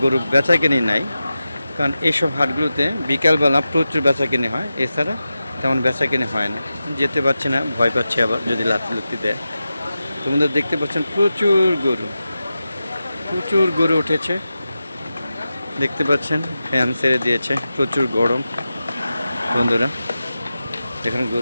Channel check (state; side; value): inverted; both; correlation -0.93